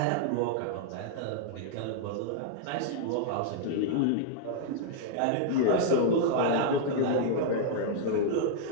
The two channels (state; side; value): different; both; correlation -0.01